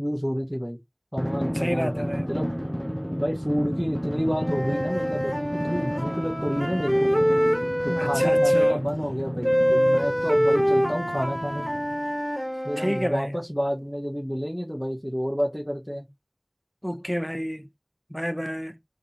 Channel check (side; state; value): both; identical; correlation 1.00